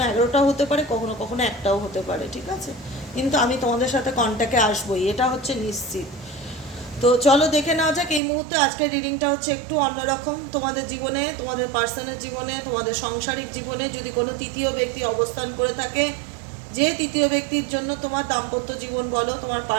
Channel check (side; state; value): left; drops out; at 8.2 s